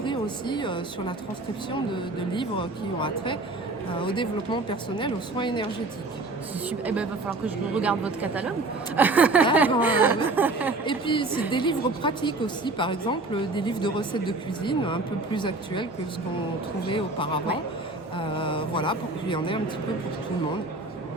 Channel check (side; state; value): left; quieter; 3.0 dB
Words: aussi sur la transcription de livres qui ont attrait au développement personnel, aux soins énergétiques. C'est super. Il va falloir que je regarde votre catalogue. Et puis c'est des livres pratiques aussi, par exemple des livres de recettes de cuisine un peu plus actuels que ce qu'on trouvait auparavant. Pour qu'il y en ait un petit peu pour tout le monde.